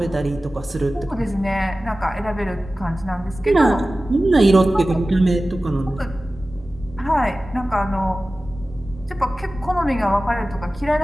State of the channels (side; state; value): both; normal; correlation 0.96